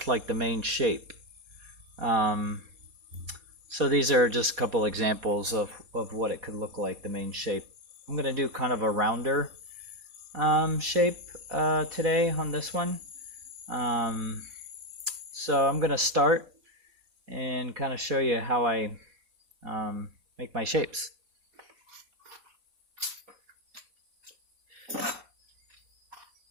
like the main shape. So these are just a couple examples of what it could look like, the main shape. I'm going to do kind of a rounder shape today on this one. So I'm going to start and kind of show you how I make my shapes.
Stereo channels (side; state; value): left; late; 4.1 ms